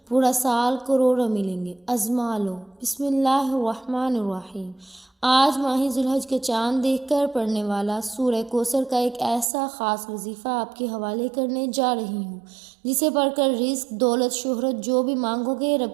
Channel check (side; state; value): left; drops out; at 9.5 s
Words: پورا سال کروڑوں ملیں گے۔ ازما لو۔ بسم اللہ الرحمن الرحیم۔ آج ماہ ذوالحج کا چاند دیکھ کر پڑھنے والا سورہ کوثر کا ایک ایسا خاص وظیفہ آپ کے حوالے کرنے جا رہی ہوں جسے پڑھ کر رزق، دولت، شہرت جو بھی مانگو گے